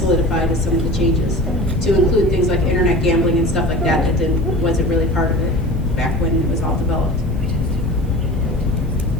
as some of the changes, to include things like internet gambling and stuff like that wasn't really part of it back when it was all developed.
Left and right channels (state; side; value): normal; both; correlation 0.37